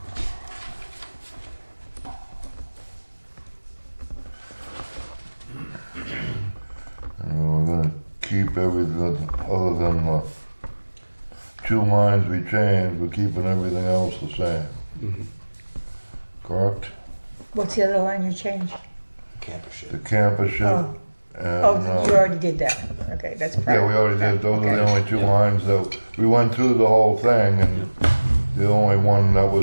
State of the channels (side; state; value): both; inverted; correlation -1.00